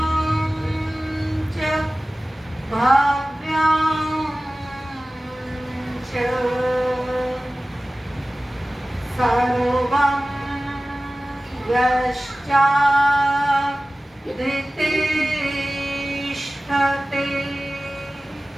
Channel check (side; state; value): both; normal; correlation 0.97